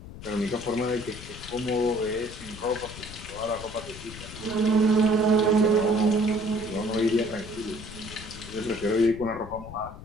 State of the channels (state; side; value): noise; left; rumble, 14 dB below the sound